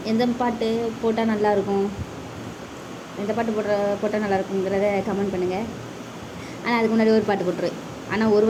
எந்த பாட்டு போட்டால் நல்லாயிருக்கும், எந்த பாட்டு போட்டால் நல்லாயிருக்குங்கிறத கமெண்ட் பண்ணுங்கள். ஆனால் அதுக்கு முன்னாடி ஒரு பாட்டு போட்டுருவேன். ஆனால் ஒரு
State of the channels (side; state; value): both; identical; correlation 1.00